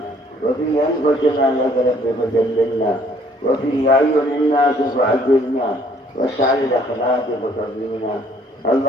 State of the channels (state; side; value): normal; both; correlation 0.61